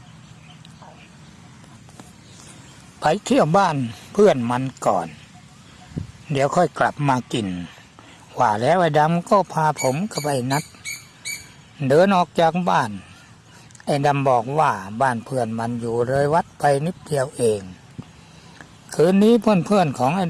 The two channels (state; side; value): identical; both; correlation 1.00